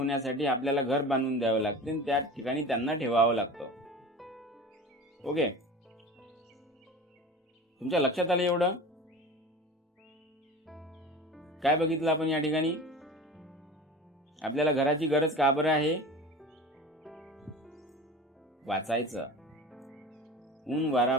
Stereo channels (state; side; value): normal; both; correlation 0.35